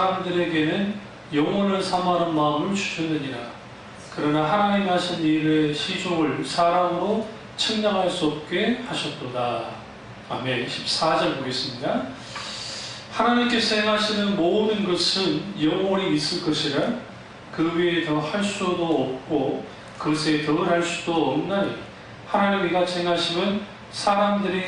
영혼을 사모하는 마음을 주셨느니라. 그러나 하나님이 하신 일의 시종을 사람으로 측량할 수 없게 하셨도다. 아멘. 14절 보겠습니다. 하나님께서 행하시는 모든 것은 영원히 있을 것이라 그 위에 더 할 수도 없고 그것에 더 할 수도 없나니 하나님이 이같이 행하심은 사람들이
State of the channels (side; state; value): both; identical; correlation 1.00